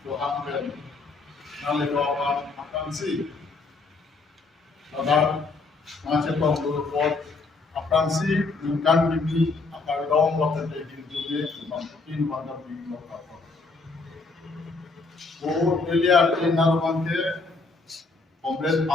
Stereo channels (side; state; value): right; quieter; 3.8 dB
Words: Tuhan Ben Nalibawan Akansi Ladar Macetong Durupot Akansi Bukan Bibi Akardong Waktu Daging Dunia Mungkin Wanda Bibi Lokapot O Delia Narmante Comrade